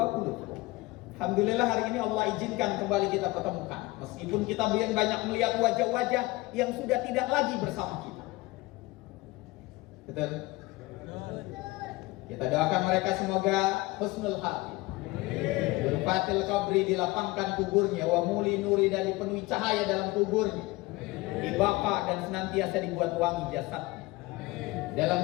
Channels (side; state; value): right; quieter; 21.1 dB